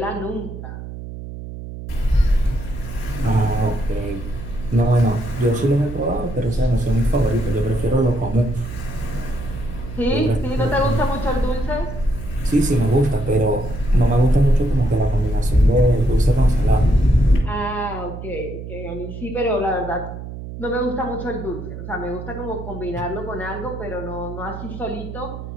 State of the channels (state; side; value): noise; right; hum, 10 dB below the sound